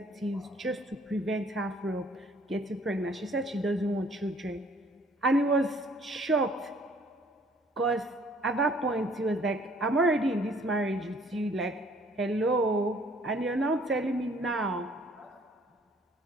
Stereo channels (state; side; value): normal; both; correlation 0.59